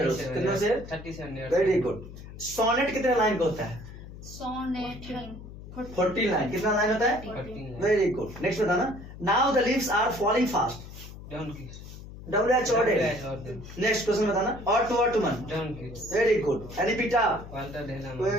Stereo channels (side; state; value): left; noise; hum, 14 dB below the sound